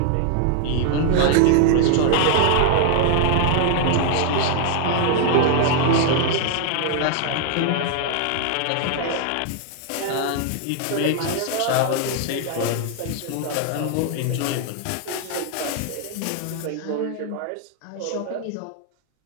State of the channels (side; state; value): both; different; correlation 0.00